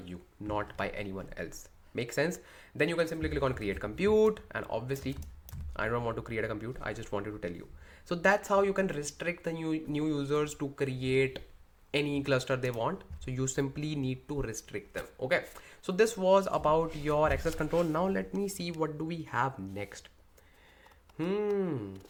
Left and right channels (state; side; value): identical; both; correlation 1.00